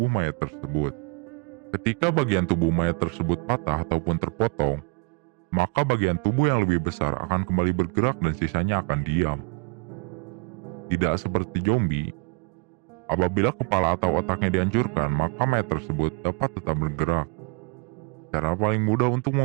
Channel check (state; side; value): quieter; left; 33.7 dB